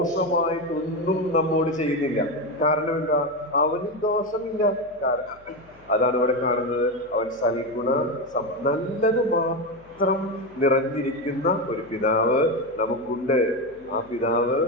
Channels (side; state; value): left; noise; hum, 28 dB below the sound